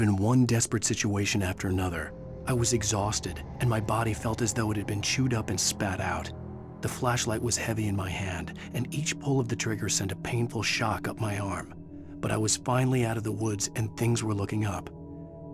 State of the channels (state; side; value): identical; both; correlation 1.00